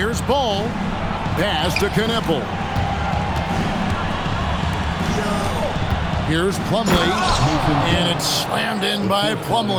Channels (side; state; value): both; identical; correlation 1.00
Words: Ball. Pass to Kneppel. Here's Plumlee. And it's slammed in by